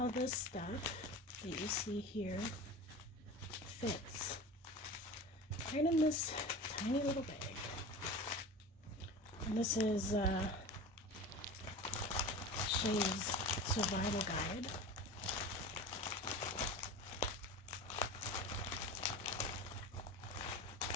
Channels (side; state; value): both; normal; correlation 0.33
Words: this stuff that you see here fits right in this tiny little bag. And this is SHEAS survival guide.